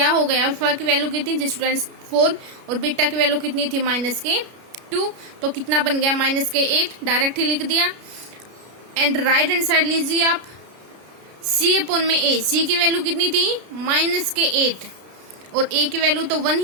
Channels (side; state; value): left; late; 33 ms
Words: हो गया, अल्फा की वैल्यू कितनी थी स्टूडेंट्स 4 और बीटा की वैल्यू कितनी थी -2, तो कितना बन गया -8, डायरेक्ट ही लिख दिया। एंड राइट हैंड साइड लीजिए आप, सी अपॉन में ए, सी की वैल्यू कितनी थी -8 और ए की वैल्यू तो 1